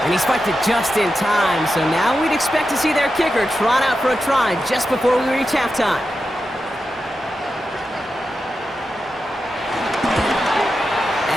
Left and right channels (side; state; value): both; normal; correlation 0.90